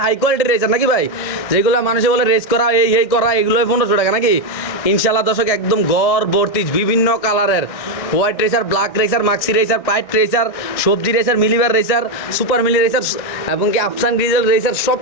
হাই কোয়ালিটির রেসার নাকি ভাই? যেগুলো মানুষে বলে রেস করা এই করা, এগুলো 1500 টাকা নাকি? ইনশাল্লাহ দর্শক, একদম গড় ভর্তি বিভিন্ন কালারের হোয়াইট রেসার, ব্ল্যাক রেসার, মাক্সি রেসার, পাইট রেসার, সবজি রেসার, মিলিবার রেসার, সুপার মিলি রেসার এবং কি আফসান গ্রিজেল রেসার, সব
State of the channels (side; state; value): right; late; 1.6 ms